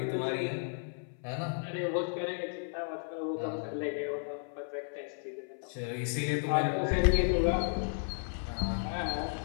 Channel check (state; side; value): silent; right; 55 dB below the other